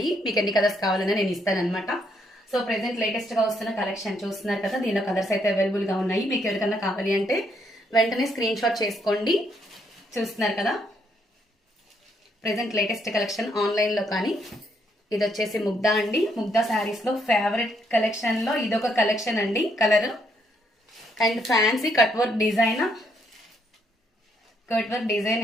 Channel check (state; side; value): normal; both; correlation 0.73